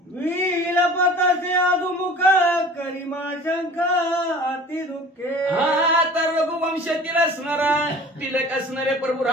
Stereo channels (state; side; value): normal; both; correlation 0.44